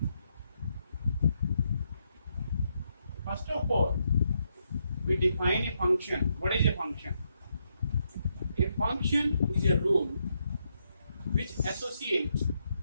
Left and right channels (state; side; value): inverted; both; correlation -0.79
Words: first of all, we define a function. What is a function? A function is a rule which associates